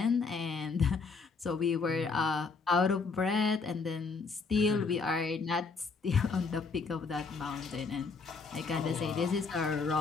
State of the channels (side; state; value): right; quieter; 4.6 dB